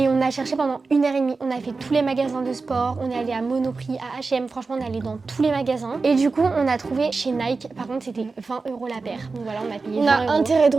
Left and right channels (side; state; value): left; quieter; 4.1 dB